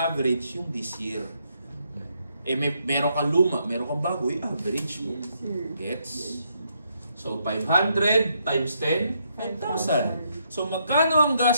yung this year. Meron kang luma, meron kang bago, average mo. Gets? So, 500 times 10, 5,000. So, magkano ang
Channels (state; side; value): inverted; both; correlation -0.76